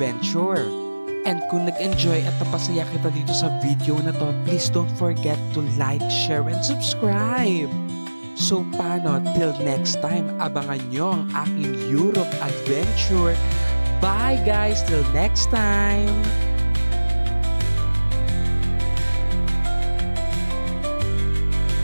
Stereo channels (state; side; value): inverted; both; correlation -1.00